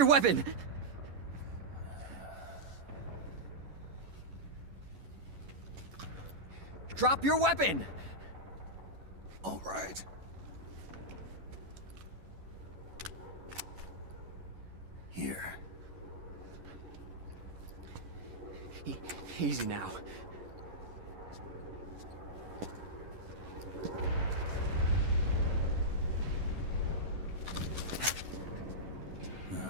weapon! Drop your weapon! All right. Here. Easy now.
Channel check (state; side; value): late; left; 11 ms